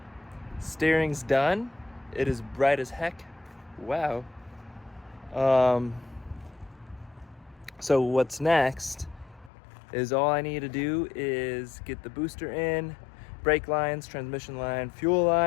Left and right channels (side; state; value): right; drops out; at 9.5 s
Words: Steering's done. It is bright as heck. Wow. So what's next is all I need to do is get the booster in, brake lines, transmission line, fuel